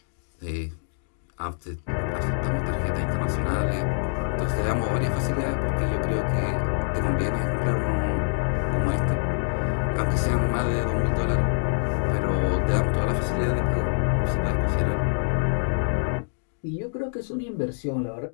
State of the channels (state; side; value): silent; right; digital silence